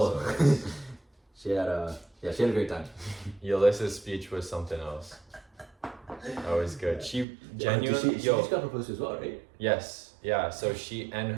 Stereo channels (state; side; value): drops out; left; at 7.2 s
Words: she had a great time. Yalissa's speech was something else. Always good. She genuinely. She just got proposed to as well, right? Yes. Yeah. So she and